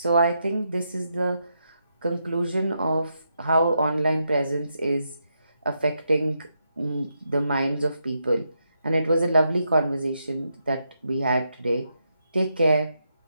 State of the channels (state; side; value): inverted; both; correlation -0.82